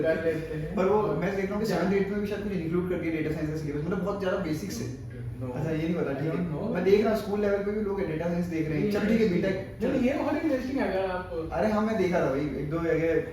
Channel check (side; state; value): both; identical; correlation 1.00